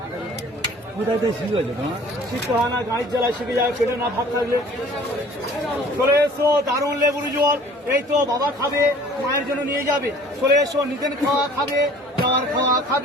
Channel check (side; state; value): both; normal; correlation 0.50